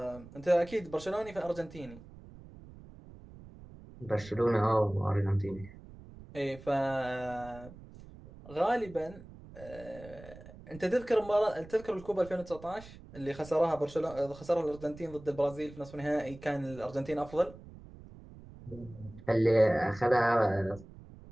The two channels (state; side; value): noise; right; rumble, 18 dB below the sound